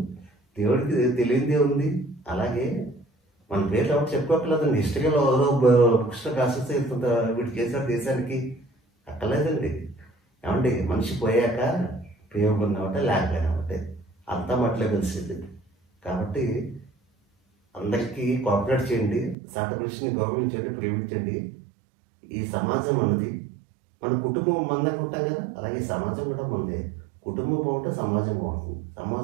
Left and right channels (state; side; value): drops out; left; at 19.4 s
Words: దేవుడికి తెలియదే ఉంది. అలాగే మన పేర్లు ఎవరు చెప్పుకోకలేదండి. హిస్టరీలో బుక్స్లో కాసేస్తే ఇంత వీటి చేశారు దేశానికి అక్కర్లేదండి. ఏమండి మనిషి పోయాక పేరు ఉన్నామంటే లేకపోయినామంటే అంతా మట్లో కలిసింది. కాబట్టి అందరికీ కోఆపరేట్ చేయండి, సాటి మనిషిని గౌరవించండి, ప్రేమించండి. ఈ సమాజం అన్నది మన కుటుంబం మందంగా ఉంటాం కదా, అలాగే సమాజం కూడా మందే. కుటుంబం బాగుంటే సమాజం బాగుంటుంది,